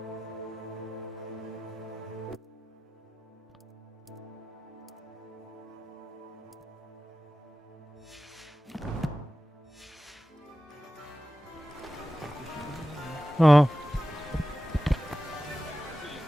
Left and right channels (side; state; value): both; normal; correlation 0.94